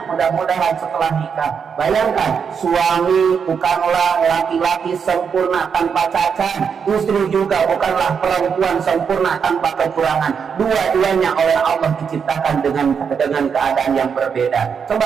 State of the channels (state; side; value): quieter; left; 6.6 dB